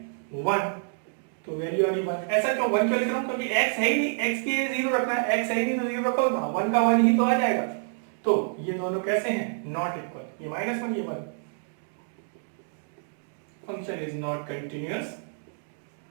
1, तो वैल्यू आ गई 1। ऐसा क्यों 1 क्यों लिख रहा हूं, क्योंकि x है ही नहीं, x के 0 रखना है, x है ही नहीं तो 0 रखो, 1 का 1 ही तो आ जाएगा। तो ये दोनों कैसे हैं, नॉट इक्वल, ये -1 ये 1। Function is not continuous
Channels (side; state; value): left; silent; digital silence